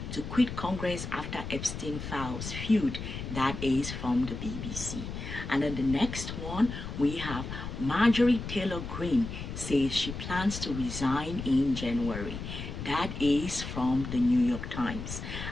to quit Congress after Epstein files Feud, that is from the BBC. And then the next one, we have Marjorie Taylor Greene says she plans to resign in January. That is from the New York Times.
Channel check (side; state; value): left; noise; rumble, 7 dB below the sound